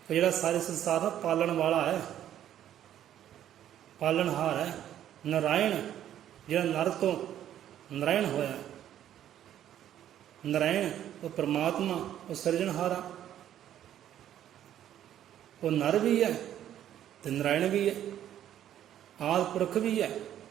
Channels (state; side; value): quieter; left; 11.1 dB